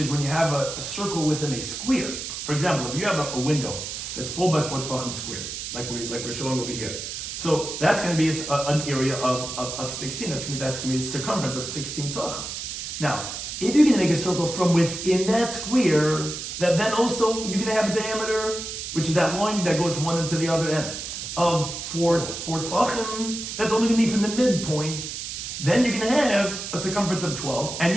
when you have a circle within a square. For example, if you have a window that's 4 by 4 tefachim square, like we're showing over here, so that's going to be an area of 16. That's going to be a circumference of 16 tefachim. Now, if you're going to make a circle from within that square, that then also you're going to have a diameter, which is that line that goes one into the other end, of 4 tefachim. That's only going to be from the midpoint. Then you're going to have a circumference of 12, and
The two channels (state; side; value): noise; right; hiss, 6 dB below the sound